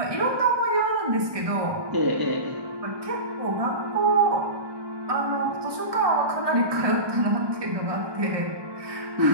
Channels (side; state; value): left; late; 1.2 ms